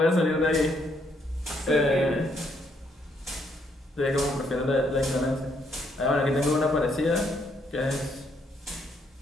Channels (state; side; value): normal; both; correlation 0.72